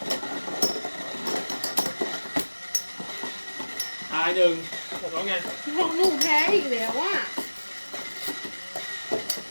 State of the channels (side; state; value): both; inverted; correlation -1.00